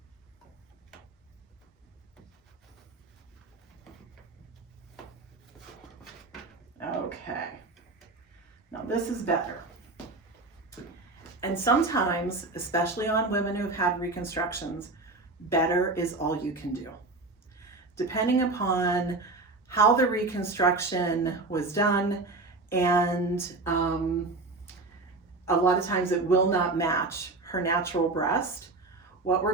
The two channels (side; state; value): left; quieter; 3.4 dB